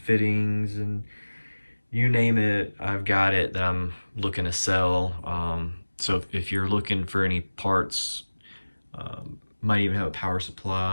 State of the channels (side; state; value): both; inverted; correlation -1.00